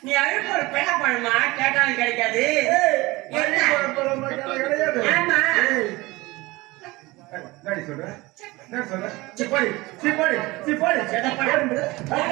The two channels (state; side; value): quieter; left; 21.5 dB